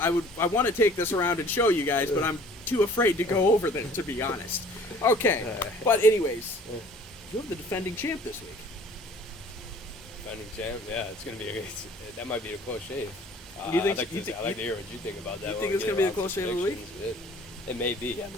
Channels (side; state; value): both; normal; correlation 0.52